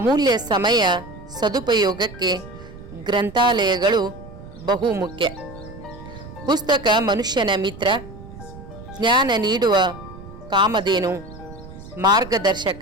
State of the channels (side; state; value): right; noise; rumble, 16 dB below the sound